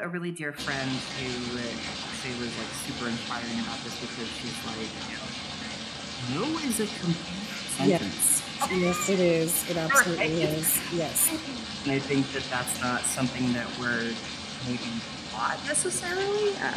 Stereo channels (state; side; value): identical; both; correlation 1.00